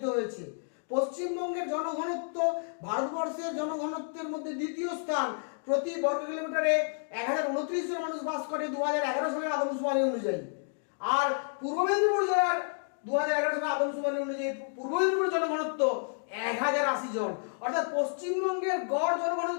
হয়েছে। পশ্চিমবঙ্গের জনঘনত্ব ভারতবর্ষের জনঘনত্বের মধ্যে দ্বিতীয় স্থান। প্রতি বর্গ কিলোমিটারে 1029 জন মানুষ বাস করে 2011 সালের আদমশুমারি অনুযায়ী। আর পূর্ব মেদিনীপুর জেলার 2011 সালের আদমশুমারি অনুযায়ী পূর্ব মেদিনীপুর জনঘনত্ব 1080 জন। অর্থাৎ পশ্চিমবঙ্গের গড়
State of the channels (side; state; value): right; silent; digital silence